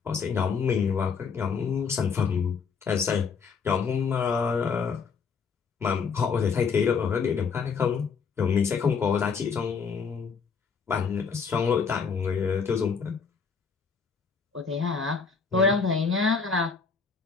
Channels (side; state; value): right; quieter; 5.7 dB